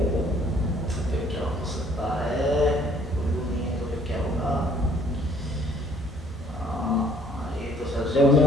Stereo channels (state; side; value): normal; both; correlation 0.60